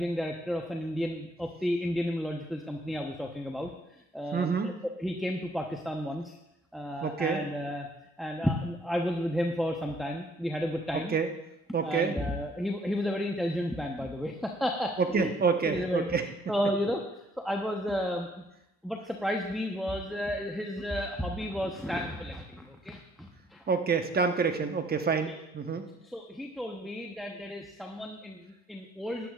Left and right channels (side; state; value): both; normal; correlation 0.64